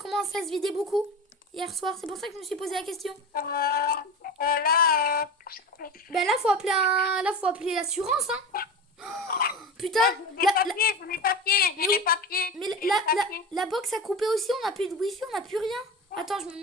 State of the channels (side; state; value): both; normal; correlation 0.28